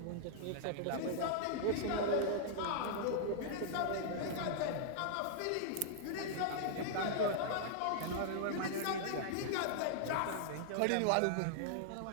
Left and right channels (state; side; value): different; both; correlation -0.01